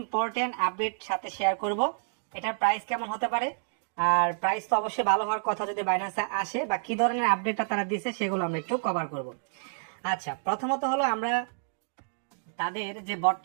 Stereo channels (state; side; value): silent; left; digital silence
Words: আপডেট সাথে শেয়ার করব। এটার প্রাইস কেমন হতে পারে, আর প্রাইস তো অবশ্যই ভালো হওয়ার কথা যদি বাইন্যান্সে আসে, বা কি ধরনের আপডেটটা তারা দিছে সেগুলো আমরা একটু কভার করব। আচ্ছা, প্রথমত হলো আমরা তাদের যে